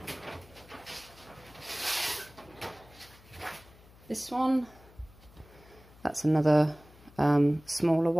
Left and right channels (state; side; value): noise; left; hum, 24 dB below the sound